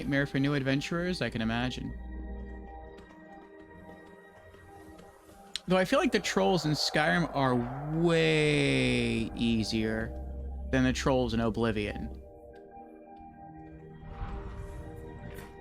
for new adventurers, I can imagine. Though I feel like the trolls in Skyrim are way easier than the trolls in Oblivion.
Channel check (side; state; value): both; identical; correlation 1.00